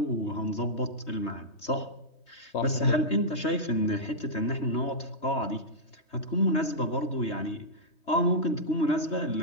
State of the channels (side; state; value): right; late; 3.2 ms